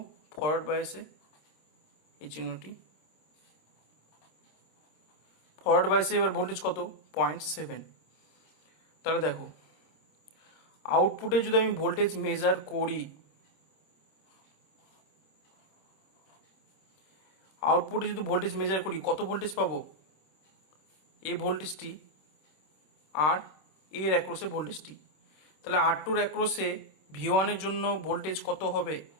ফরওয়ার্ড বায়াসে এই চিহ্নটি, ফরওয়ার্ড বায়াসে এবার ভোল্টেজ কত 0.7। তাহলে দেখো আউটপুটে যদি আমি ভোল্টেজ মেজার করি, কত ভোল্টেজ পাবো, এই ভোল্টেজটি আর এর অ্যাক্রসে ভোল্টেজটি। তাহলে R2 এর অ্যাক্রসে V1 এর জন্য ভোল্টেজ কত হবে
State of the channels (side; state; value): right; late; 26 ms